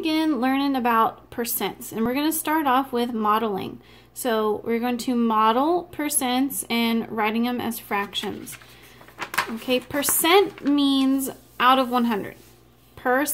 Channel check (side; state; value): both; identical; correlation 1.00